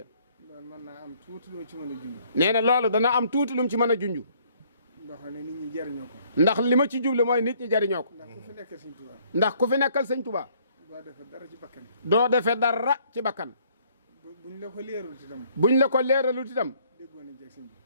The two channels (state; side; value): inverted; both; correlation -0.63